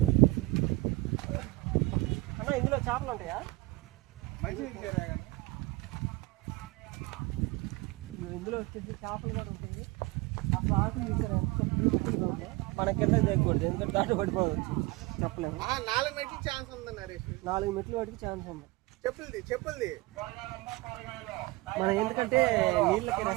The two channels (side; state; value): left; quieter; 22.1 dB